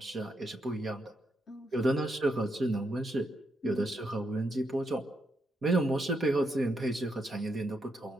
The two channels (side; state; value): both; normal; correlation 0.80